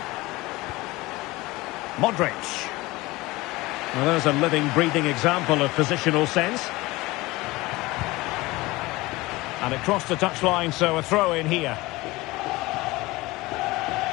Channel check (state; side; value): quieter; right; 20.8 dB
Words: Modric. Well, there's a living, breathing example of positional sense. And it crossed the touchline, so a throw in here.